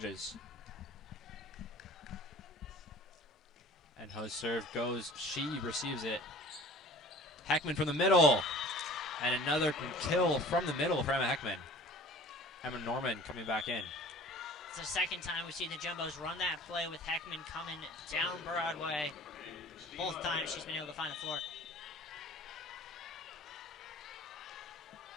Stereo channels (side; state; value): both; normal; correlation 0.45